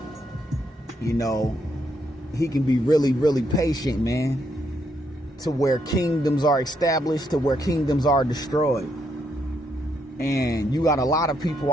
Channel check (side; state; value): both; normal; correlation 0.76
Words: he can be really, really patient, man. To where kingdoms are established, to where kingdoms are destroyed. And you got a lot of people